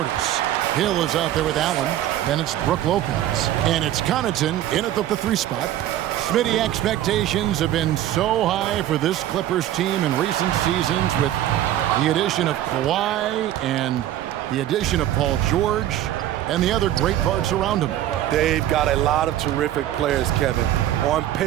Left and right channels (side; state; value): left; quieter; 12.7 dB